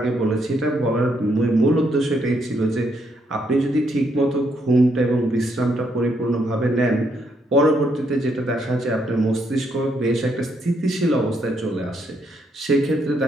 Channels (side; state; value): both; normal; correlation 0.74